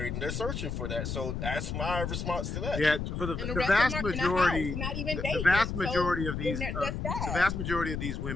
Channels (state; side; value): noise; left; rumble, 3 dB below the sound